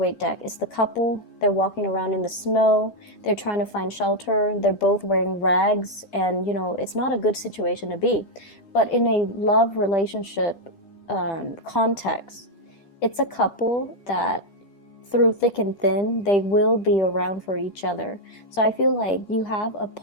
deck, it's the couple, they're walking around in the snow, they're trying to find shelter, they're both wearing rags, and, you know, it's not a good situation to be. But in a love relationship context, it's a couple that through thick and thin, they will be around for each other. So I feel like you have a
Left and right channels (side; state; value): right; late; 10 ms